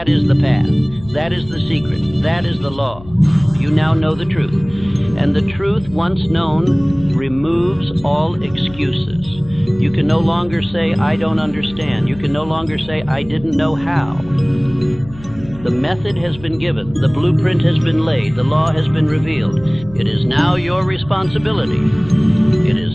is the path. That is the secret. That is the law. You now know the truth. And the truth, once known, removes all excuses. You can no longer say, I don't understand. You can no longer say, I didn't know how. The method has been given. The blueprint has been laid. The law has been revealed. It is now your responsibility. It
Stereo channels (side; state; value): left; noise; hum, 18 dB below the sound